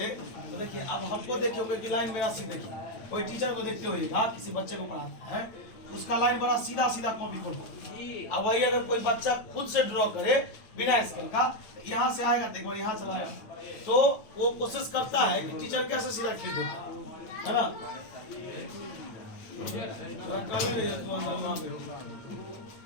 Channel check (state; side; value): late; right; 9.1 ms